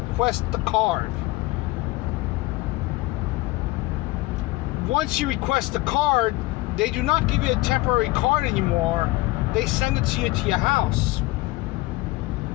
the card. Once you request the card, they do not give you a temporary card anymore. They send it to you to your house.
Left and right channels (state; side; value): quieter; right; 20.1 dB